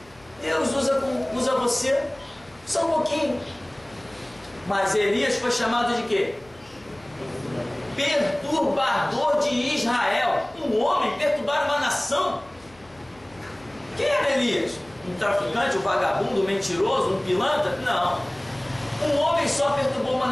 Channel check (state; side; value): noise; left; hum, 27 dB below the sound